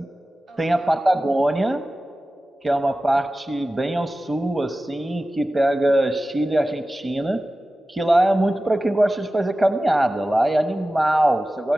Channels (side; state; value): both; normal; correlation 0.95